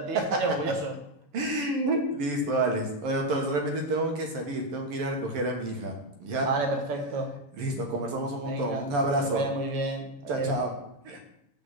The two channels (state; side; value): late; left; 7.0 ms